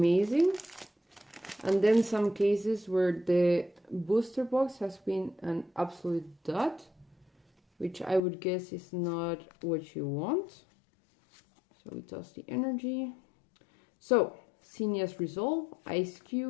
and then some cases where the booster box has been an absolute dud, which I would guess is not what you want. So we toss the energy. So Senia's Resolve, Ice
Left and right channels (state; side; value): drops out; right; at 8.2 s